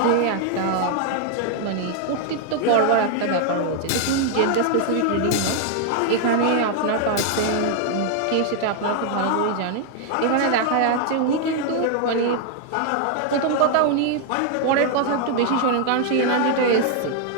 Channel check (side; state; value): both; different; correlation 0.00